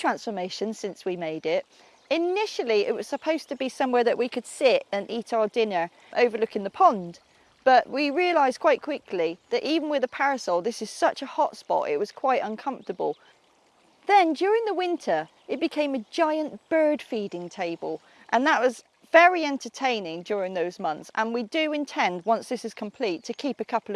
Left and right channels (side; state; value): both; identical; correlation 1.00